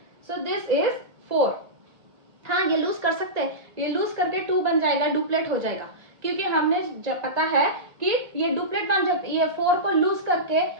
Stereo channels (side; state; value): left; late; 1.6 ms